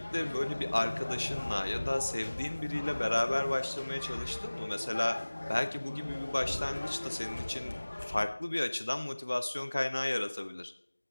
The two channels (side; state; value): both; inverted; correlation -1.00